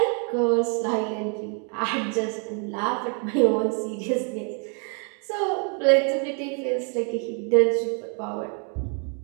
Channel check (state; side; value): quieter; left; 38.6 dB